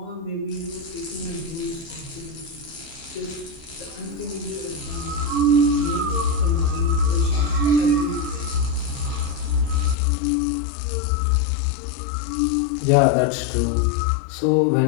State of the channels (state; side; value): drops out; right; at 10.0 s